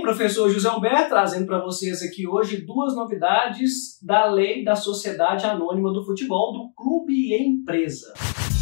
José Humberto trazendo para vocês aqui hoje duas novidades da Lei da Sociedade Anônima do Futebol do Clube e Empresa.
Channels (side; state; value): right; silent; digital silence